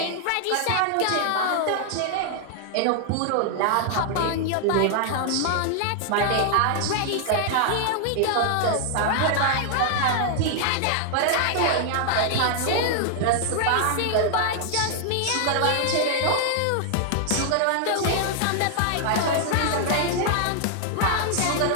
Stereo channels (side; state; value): both; different; correlation 0.00